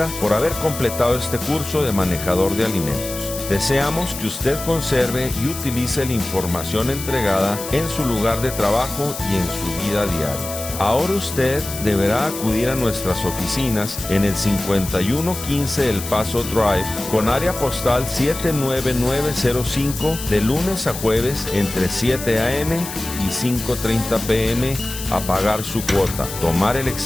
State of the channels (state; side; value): noise; left; hiss, 9 dB below the sound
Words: por haber completado este curso de manejador de alimentos. Deseamos que usted conserve y utilice la información entregada en su lugar de trabajo y en su vida diaria. Ahora usted deberá acudir a nuestras oficinas en el 5115 El Paso Drive con área postal 79905 de lunes a jueves entre 7 a.m. y 5:30 p.m. a pagar su cuota, tomar el